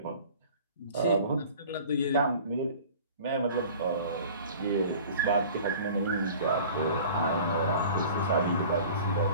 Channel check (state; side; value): inverted; both; correlation -0.44